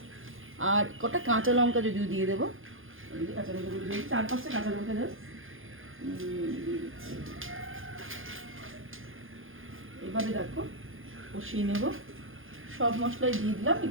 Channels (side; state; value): left; late; 0.59 ms